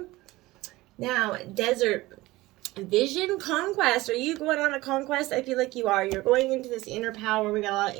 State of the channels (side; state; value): left; quieter; 19.3 dB